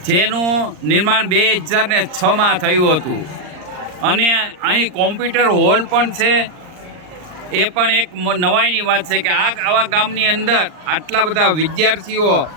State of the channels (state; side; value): late; left; 39 ms